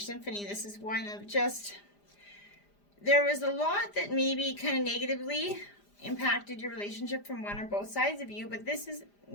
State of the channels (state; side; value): late; right; 4.9 ms